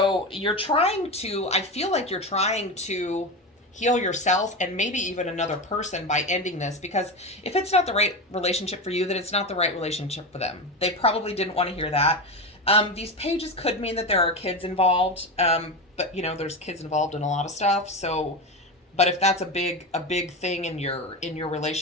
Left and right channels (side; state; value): both; normal; correlation 0.19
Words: you're trying to, I feel like you're trying to heal yourself and maybe even another person by ending this, because if it's not the right relationship for you, then it's not the right relationship for them. They probably didn't want to hear that. These pages could mean that there are kids involved, but you know, there's kids involved in a lot of stuff. So, but if that's a big thing in your